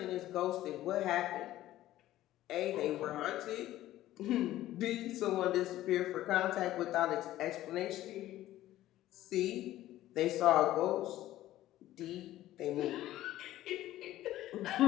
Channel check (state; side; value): quieter; right; 14.5 dB